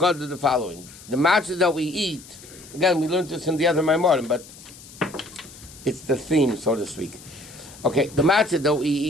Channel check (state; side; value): noise; left; hiss, 19 dB below the sound